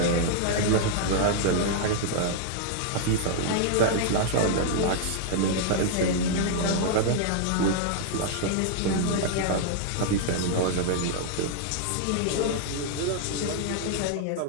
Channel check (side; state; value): both; different; correlation 0.00